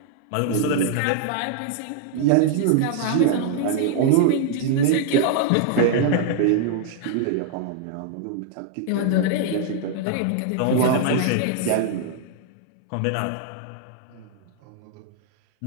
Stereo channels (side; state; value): both; different; correlation 0.00